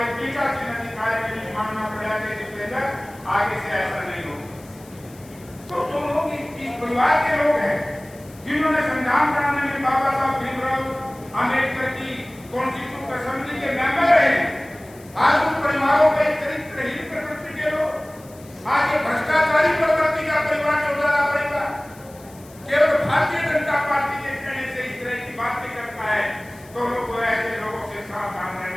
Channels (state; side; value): noise; left; hiss, 24 dB below the sound